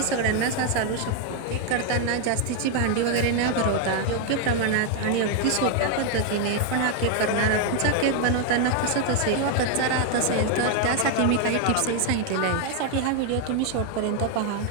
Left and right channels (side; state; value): both; different; correlation 0.00